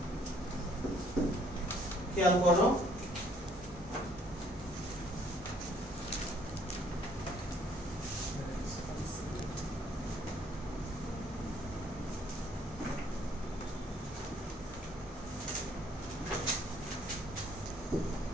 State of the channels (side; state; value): both; normal; correlation 0.63